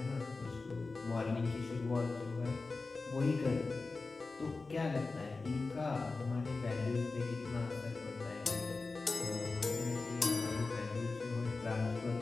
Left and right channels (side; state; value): right; quieter; 3.8 dB